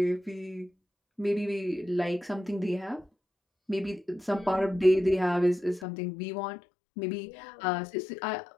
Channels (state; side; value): drops out; right; at 5.9 s